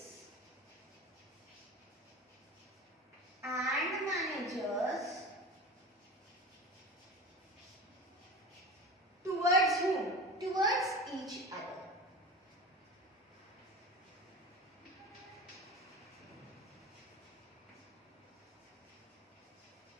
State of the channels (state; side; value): normal; both; correlation 0.32